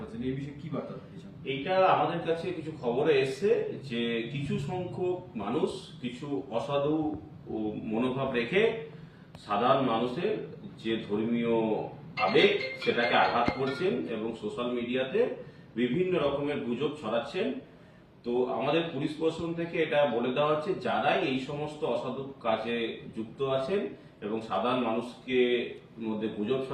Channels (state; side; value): identical; both; correlation 1.00